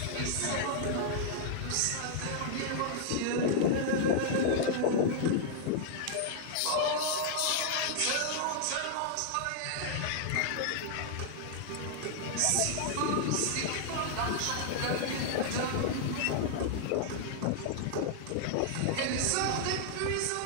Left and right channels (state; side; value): different; both; correlation -0.01